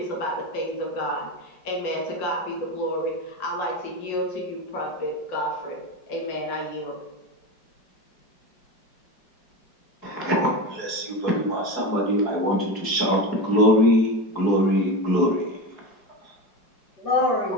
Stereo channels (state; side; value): late; right; 4.6 ms